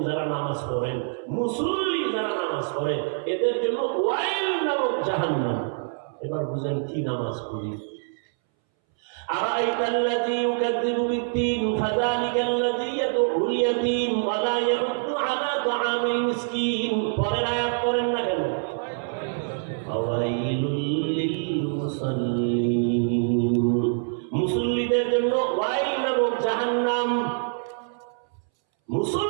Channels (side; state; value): left; silent; 61 dB below the other